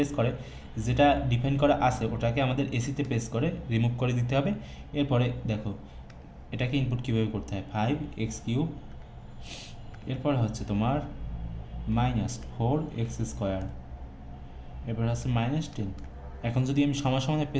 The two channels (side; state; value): both; identical; correlation 1.00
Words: করে যেটা ডিফাইন করা আছে ওটাকে আমাদের এসিতে প্রেস করে রিমুভ করে দিতে হবে। এরপরে দেখো এটাকে ইনপুট কীভাবে করতে হয়, 5x3, এরপর হচ্ছে তোমার -4x², এরপর হচ্ছে -10। এখন যদি আমি সমানে